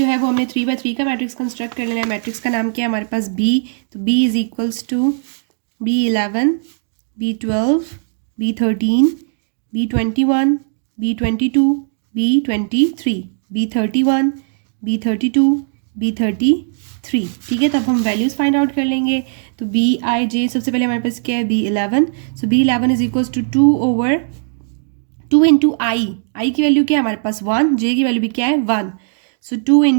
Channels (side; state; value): left; silent; digital silence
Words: है वो हमने 3/3 का मैट्रिक्स कंस्ट्रक्ट कर लेना है। मैट्रिक्स का नाम क्या है हमारे पास B, तो B is equals to B11, B12, B13, B21, B22, B23, B31, B32, B33, ठीक है। तो अब हम वैल्यूज़ फाइंड आउट कर लेंगे। तो Bij सबसे पहले हमारे पास क्या है B11, so B11 is equals to 2 into I की वैल्यू क्या है हमारे पास 1, जे की वैल्यू भी क्या है 1, सो 2